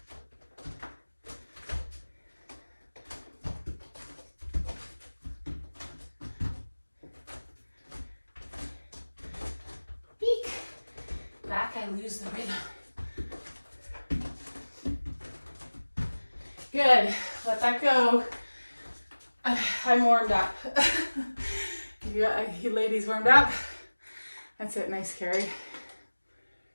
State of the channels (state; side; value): inverted; both; correlation -1.00